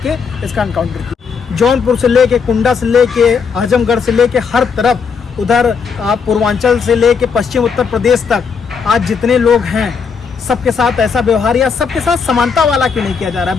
इसका एनकाउंटर किया। जौनपुर से लेके, कुंडा से लेके, आजमगढ़ से लेके हर तरफ, उधर पूर्वांचल से लेके पश्चिम उत्तर प्रदेश तक आज जितने लोग हैं सबके साथ ऐसा व्यवहार या सबके साथ समानता वाला क्यों नहीं किया जा रहा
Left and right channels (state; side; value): quieter; right; 5.8 dB